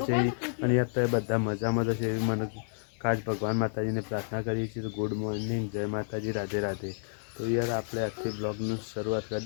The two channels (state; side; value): silent; right; digital silence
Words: છે. અને યાર તો બધા મજામાં તો છે એવી મને ખાસ ભગવાન માતાજીને પ્રાર્થના કરીએ છીએ. તો ગુડ મોર્નિંગ, જય માતાજી, રાધે રાધે. તો યાર આપણે આજથી બ્લોગની શરૂઆત